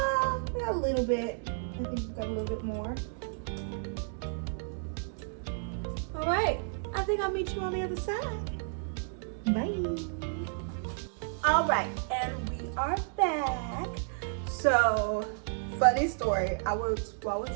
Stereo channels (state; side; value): silent; left; digital silence